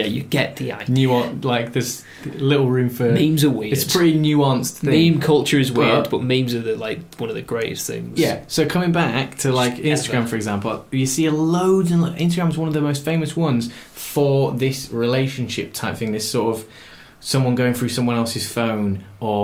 get the idea. There's little room for... Memes are weird. It's a pretty nuanced thing. Meme culture is weird, but memes are one of the greatest things. Yeah, so coming back to Instagram, for example, you see loads, and Instagram's one of the most famous ones for this relationship type thing, this sort of someone going through someone else's phone,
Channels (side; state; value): both; identical; correlation 1.00